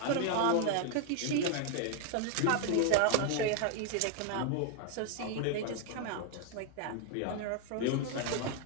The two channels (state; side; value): different; both; correlation 0.00